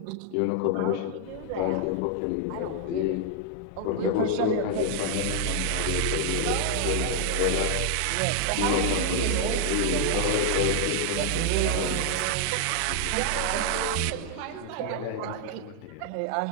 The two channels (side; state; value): both; different; correlation 0.00